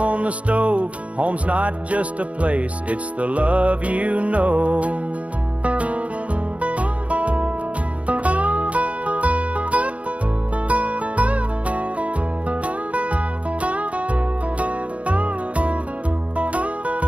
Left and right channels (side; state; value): left; late; 0.064 ms